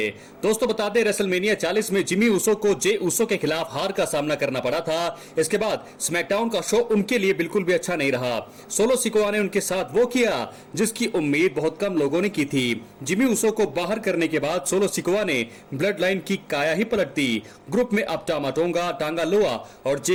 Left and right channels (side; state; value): both; identical; correlation 1.00